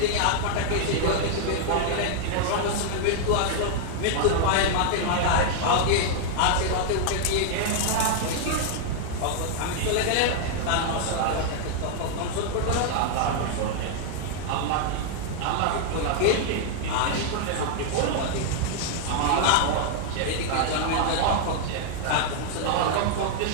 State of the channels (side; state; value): both; different; correlation 0.00